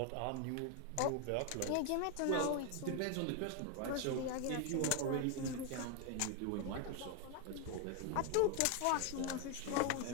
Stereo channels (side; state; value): both; different; correlation 0.01